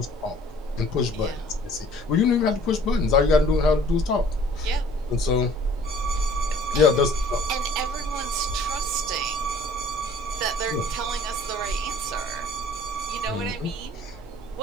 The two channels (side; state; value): both; normal; correlation 0.52